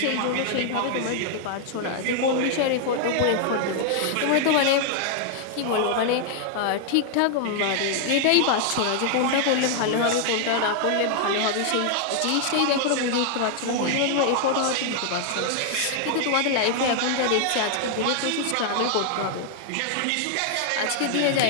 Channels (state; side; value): different; both; correlation 0.00